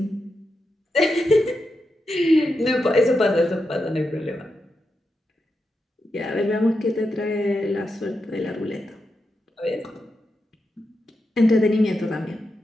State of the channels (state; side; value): normal; both; correlation 0.87